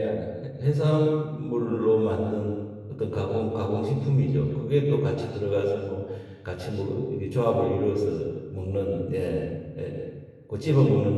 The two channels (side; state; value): both; identical; correlation 1.00